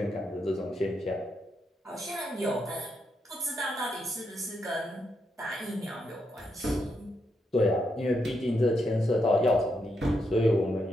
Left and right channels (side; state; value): both; normal; correlation 0.81